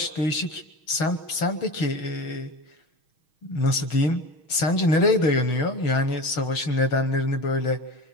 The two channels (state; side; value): late; right; 6.3 ms